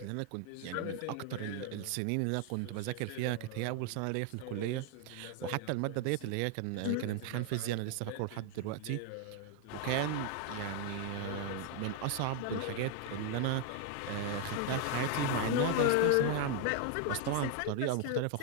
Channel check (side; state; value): both; different; correlation 0.00